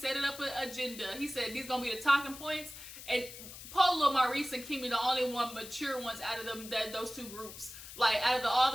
it up an agenda. He said these gonna be the talking points. And Polo, Maurice, and Kimmy, the only one mature ones out of them, those two groups. Like, out of all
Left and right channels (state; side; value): noise; left; hiss, 13 dB below the sound